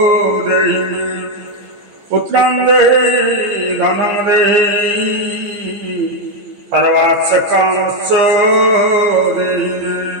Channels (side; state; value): left; late; 15 ms